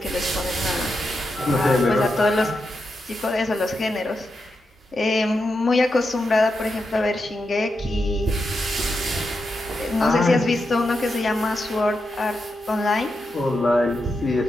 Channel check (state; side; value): normal; both; correlation 0.86